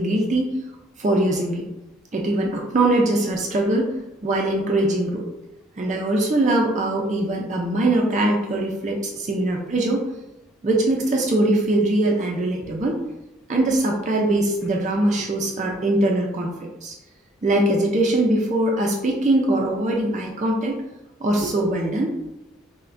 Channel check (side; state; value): both; normal; correlation 0.62